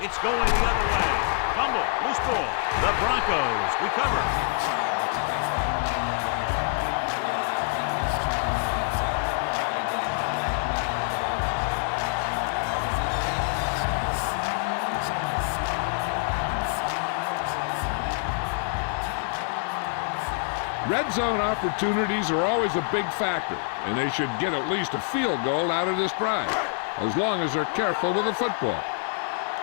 going the other way. Fumble, loose ball. The Broncos recover. Red zone opportunities are always a big factor, and they should get at least a field goal out of this drive, as long as they're careful with the football.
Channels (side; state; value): right; silent; 61 dB below the other